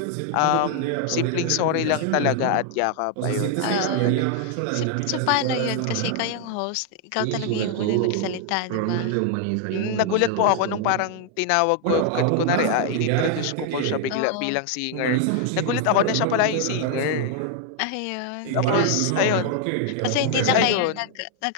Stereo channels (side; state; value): both; different; correlation 0.00